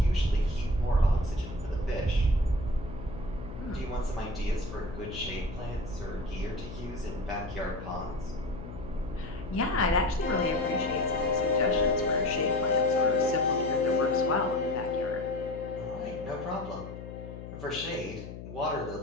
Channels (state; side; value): noise; left; hum, 11 dB below the sound